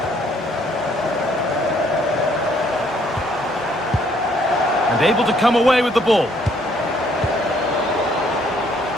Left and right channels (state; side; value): normal; both; correlation 0.65